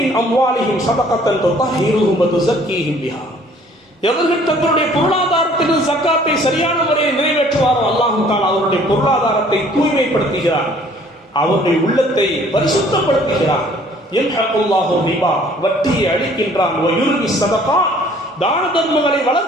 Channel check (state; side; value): normal; both; correlation 0.56